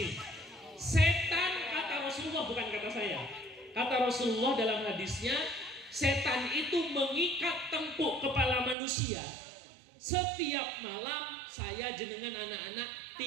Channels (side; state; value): left; drops out; at 8.8 s